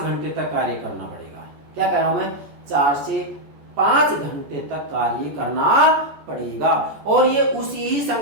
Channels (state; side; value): late; left; 14 ms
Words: तक कार्य करना पड़ेगा। क्या कह रहा हूं मैं, 4 से 5 घंटे तक कार्य करना पड़ेगा और ये उसी ही